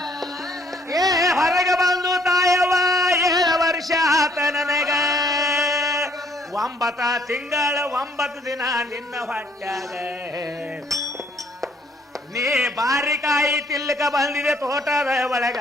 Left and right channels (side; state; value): both; normal; correlation 0.65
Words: ಹೊರಗೆ ಬಂದು ತಾಯವ್ವ 7 ವರ್ಷ ಆತ ನನಗ 9 ತಿಂಗಳ 9 ದಿನ ನಿನ್ನ ಹೊಟ್ಯಾಗ ನೀ ಬಾರಿಕಾಯಿ ತಿಲ್ಲಕ ಬಂದಿದೆ ತೋಟದ ಒಳಗ